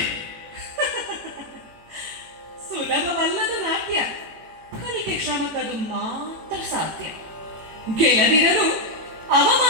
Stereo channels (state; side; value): late; left; 18 ms